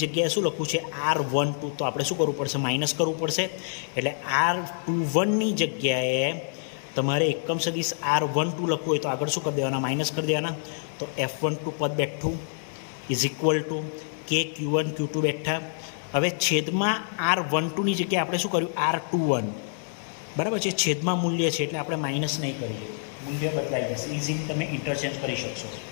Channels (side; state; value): right; silent; digital silence